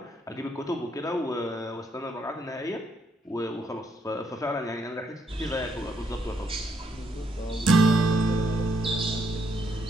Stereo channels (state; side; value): normal; both; correlation 0.74